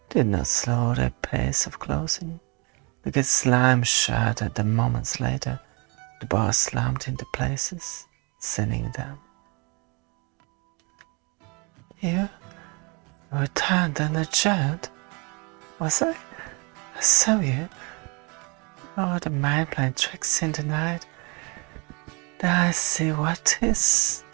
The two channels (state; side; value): quieter; left; 30.4 dB